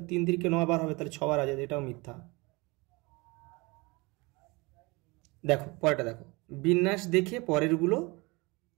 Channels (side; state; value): left; quieter; 25.4 dB